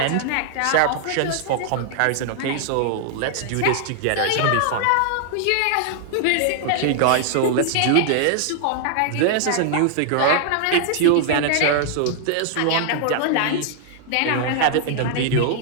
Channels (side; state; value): both; different; correlation 0.00